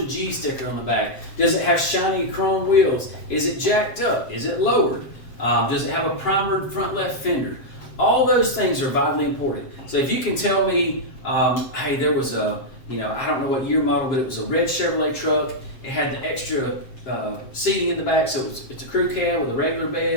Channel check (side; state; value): right; late; 7.6 ms